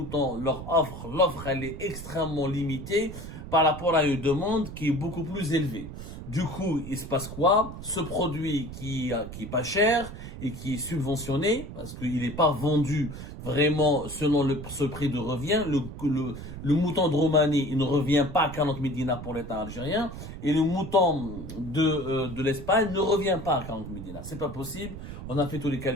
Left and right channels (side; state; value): right; noise; rumble, 10 dB below the sound